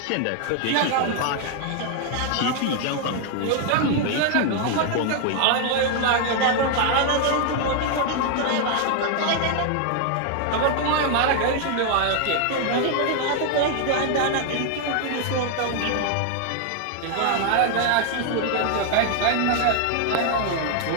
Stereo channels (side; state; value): both; different; correlation 0.00